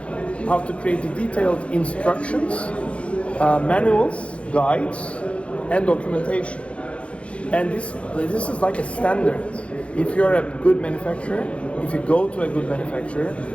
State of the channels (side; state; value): right; late; 0.061 ms